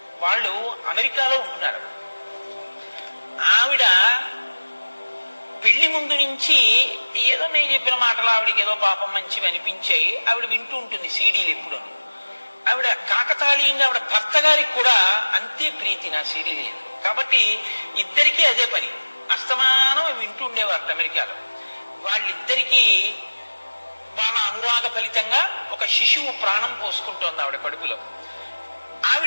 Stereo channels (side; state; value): both; inverted; correlation -1.00